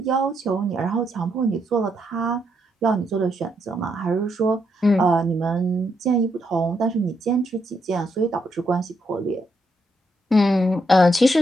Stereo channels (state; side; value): normal; both; correlation 0.78